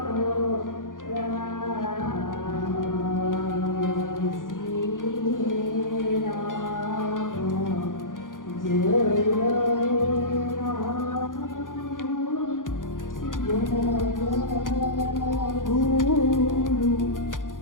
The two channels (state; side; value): late; right; 0.89 ms